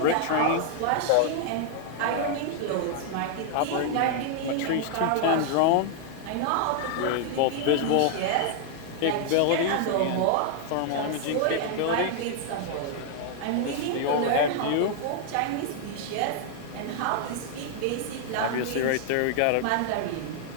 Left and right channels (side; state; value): both; different; correlation 0.00